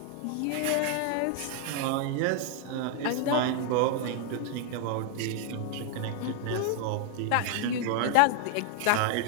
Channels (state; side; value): different; both; correlation 0.00